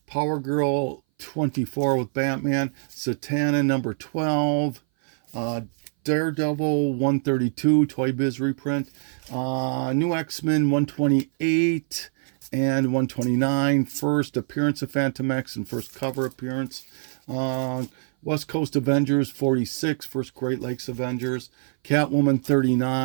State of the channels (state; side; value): silent; left; 59 dB below the other